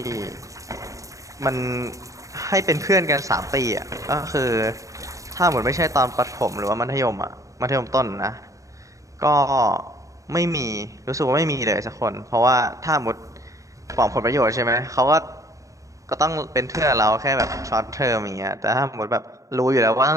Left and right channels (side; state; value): left; late; 0.16 ms